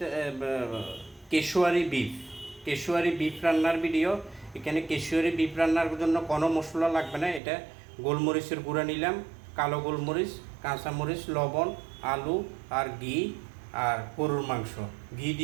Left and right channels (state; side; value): drops out; left; at 7.4 s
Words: কেশুয়ারি বিফ রান্নার ভিডিও। এখানে কেশুয়ারি বিফ রান্নার জন্য কোনো মশলা লাগবে না। এটা গোলমরিচের গুঁড়া নিলাম, কালো গোলমরিচ, কাঁচামরিচ, লবণ, আলু আর ঘি আর গরুর মাংস। ঘি